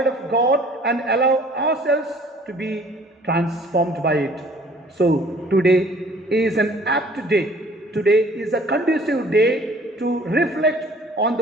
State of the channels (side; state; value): both; normal; correlation 0.54